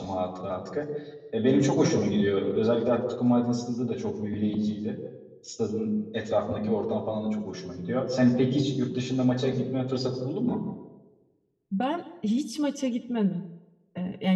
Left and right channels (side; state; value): both; identical; correlation 1.00